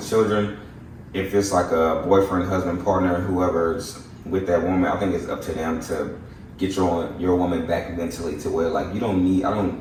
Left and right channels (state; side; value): identical; both; correlation 1.00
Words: children. If it's like a boyfriend, husband, partner, whoever's with that woman, I think it's up to them to get your woman back mentally to where like we don't need